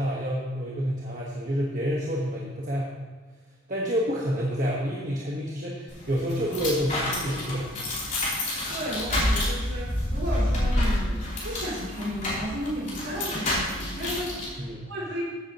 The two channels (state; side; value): normal; both; correlation 0.59